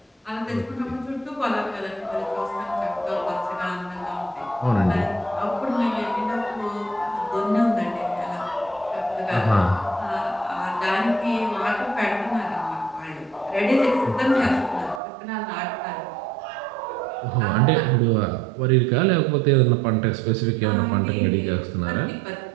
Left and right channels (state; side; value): drops out; left; at 15.0 s